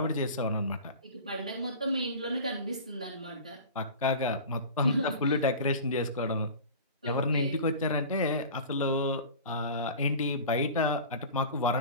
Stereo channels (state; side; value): inverted; both; correlation -0.36